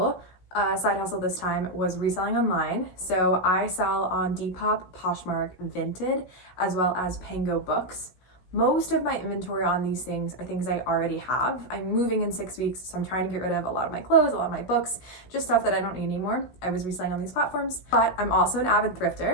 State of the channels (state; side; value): late; right; 16 ms